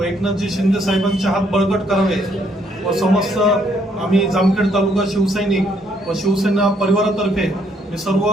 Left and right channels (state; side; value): normal; both; correlation 0.69